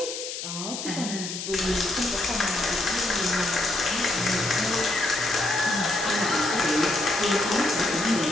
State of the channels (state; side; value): noise; left; hiss, 7 dB below the sound